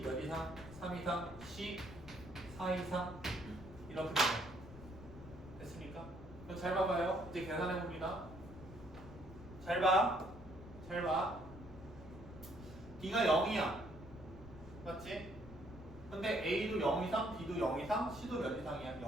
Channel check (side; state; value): left; noise; rumble, 15 dB below the sound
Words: 몇 이상, 3 이상, C 4 이상 이렇게 돼요. 됐습니까? 그럼 잘 봐봐요. 이제 계산해 봅니다. 잘 봐. 잘 봐. D가 0이야. 맞지? 근데 A도 0 이상, B도 0 이상, C도 몇 이상이야?